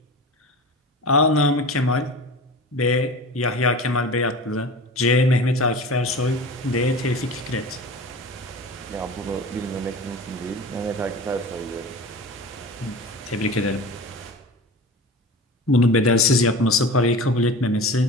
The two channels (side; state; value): both; normal; correlation 0.34